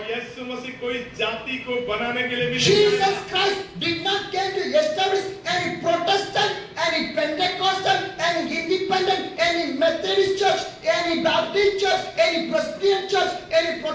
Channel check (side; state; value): both; identical; correlation 1.00